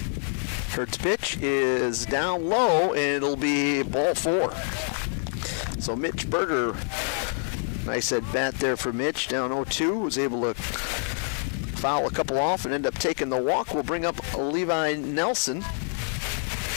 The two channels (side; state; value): right; silent; 55 dB below the other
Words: Hurd's pitch is down low, and it'll be ball 4. So Mitch Berger, nice at bat there for Mitch, down 0-2, was able to foul a couple off and end up taking the walk. We'll bring up Levi Nelson.